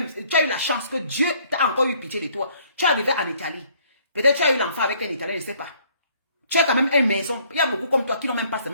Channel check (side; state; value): both; inverted; correlation -0.62